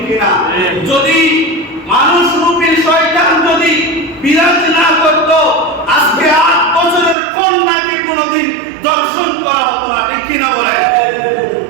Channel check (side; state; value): left; drops out; at 7.2 s